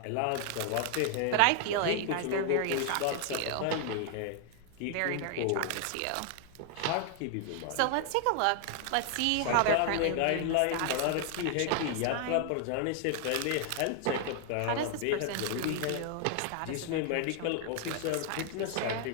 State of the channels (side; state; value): both; different; correlation 0.00